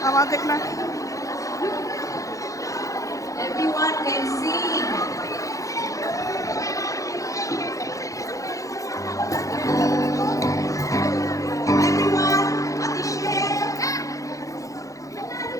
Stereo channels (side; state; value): right; late; 0.16 ms